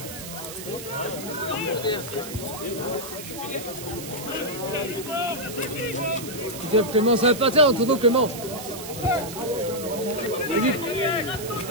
Clément, ça va partir en tournant Clément. Vas-y.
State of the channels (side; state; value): right; noise; hiss, 11 dB below the sound